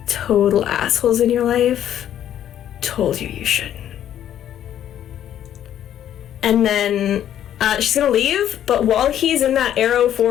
total assholes in your life told you you shouldn't. And then she's gonna leave, but while he's in that Arrow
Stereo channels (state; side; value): quieter; right; 10.8 dB